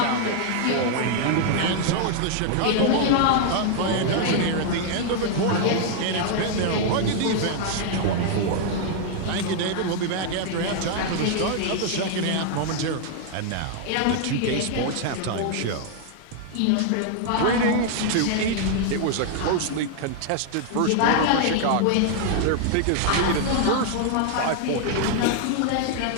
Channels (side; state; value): both; different; correlation 0.00